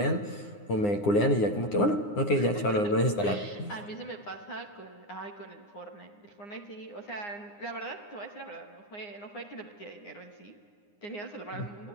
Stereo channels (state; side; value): late; right; 9.7 ms